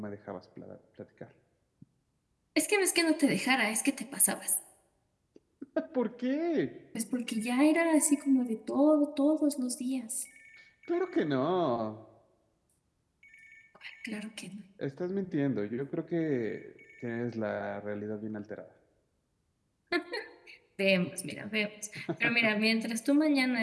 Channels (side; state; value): both; identical; correlation 1.00